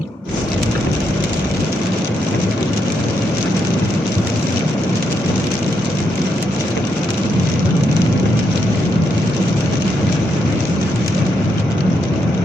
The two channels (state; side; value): normal; both; correlation 0.80